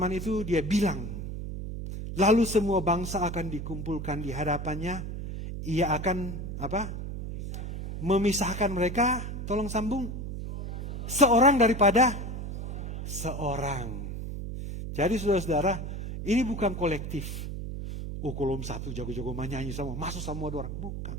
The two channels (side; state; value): right; noise; hum, 6 dB below the sound